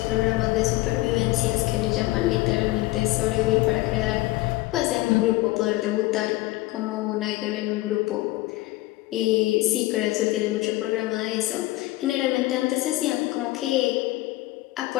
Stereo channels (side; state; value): right; quieter; 18.7 dB